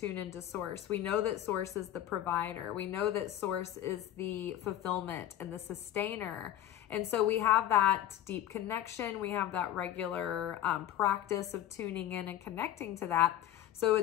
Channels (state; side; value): quieter; right; 12.1 dB